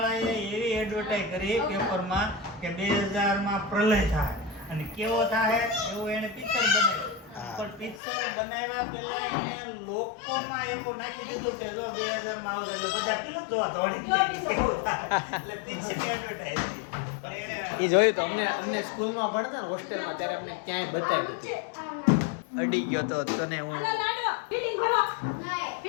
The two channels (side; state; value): right; drops out; at 8.0 s